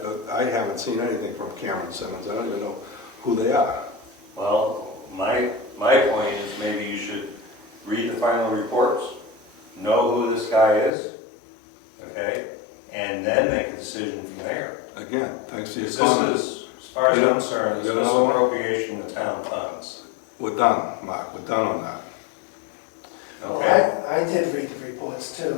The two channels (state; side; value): drops out; right; at 10.9 s